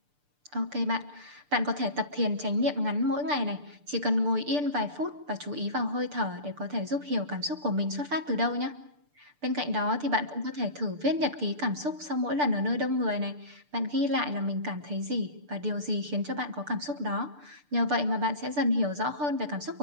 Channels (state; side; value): late; left; 6.8 ms